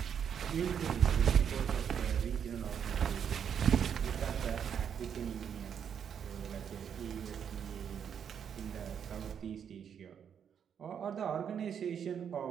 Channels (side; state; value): left; quieter; 8.0 dB